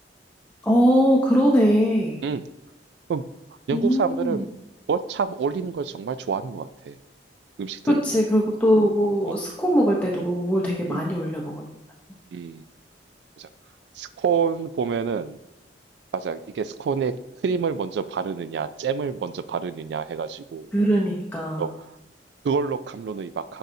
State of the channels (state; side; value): normal; both; correlation 0.61